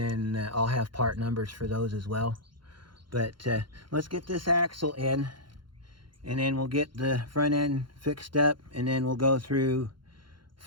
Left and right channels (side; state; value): left; late; 0.72 ms